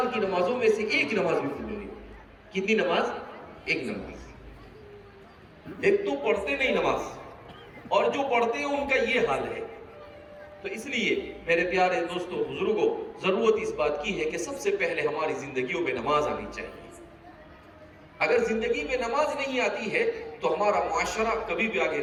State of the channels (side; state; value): both; identical; correlation 1.00